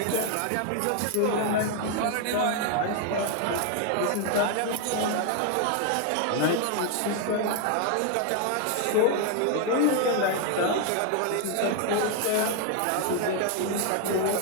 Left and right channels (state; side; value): different; both; correlation 0.00